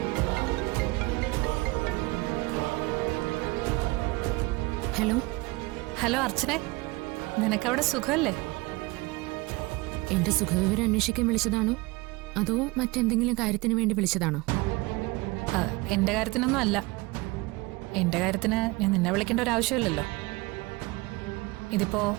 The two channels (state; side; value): quieter; left; 23.5 dB